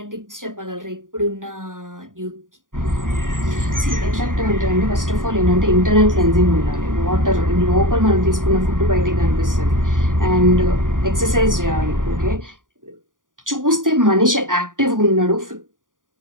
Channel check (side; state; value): left; late; 0.89 ms